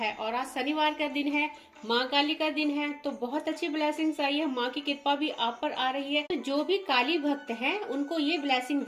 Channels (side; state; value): both; identical; correlation 1.00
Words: और आज शनिवार का दिन है, माँ काली का दिन है। तो बहुत अच्छी ब्लेसिंग्स आई है, माँ की कृपा भी आप पर आ रही है। तो जो भी काली भक्त हैं उनको ये ब्लेसिंग